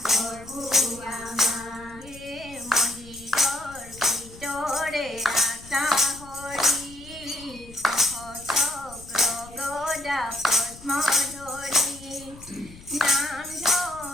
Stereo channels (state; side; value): noise; left; rumble, 19 dB below the sound